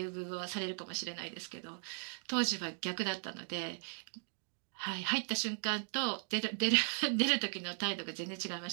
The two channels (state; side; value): silent; left; 53 dB below the other